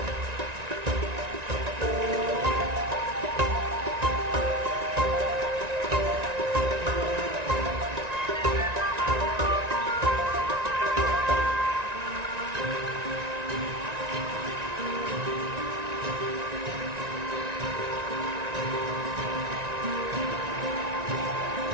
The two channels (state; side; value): late; left; 1.9 ms